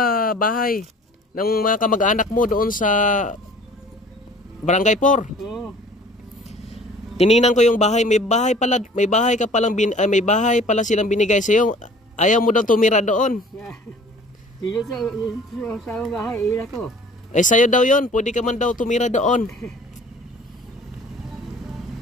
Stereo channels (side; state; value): both; normal; correlation 0.49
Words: bahay ng mga kamag-anak mo doon sa Barangay 4. Oo. Tiningnan ko yung bahay, may bahay pala silang binigay sa iyo. Ayaw mo daw tumira doon. Dito sa bahay, ila ko. Eh sa'yo daw 'yon, pwede ka man daw tumira doon.